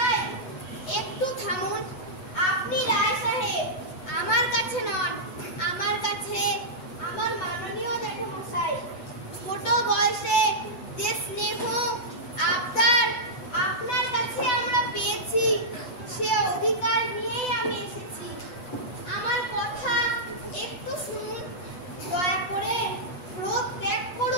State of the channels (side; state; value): right; late; 8.0 ms